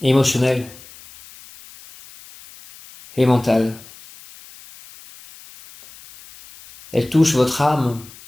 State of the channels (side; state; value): left; noise; hiss, 21 dB below the sound